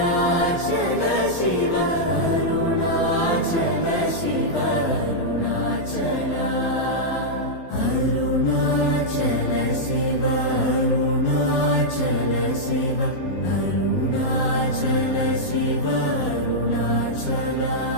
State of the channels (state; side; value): late; right; 12 ms